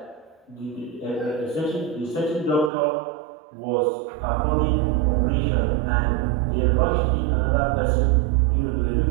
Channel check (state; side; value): drops out; left; at 2.7 s